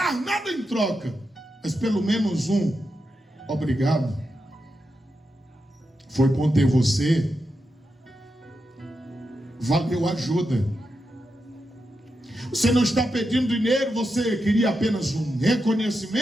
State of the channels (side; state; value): both; normal; correlation 0.87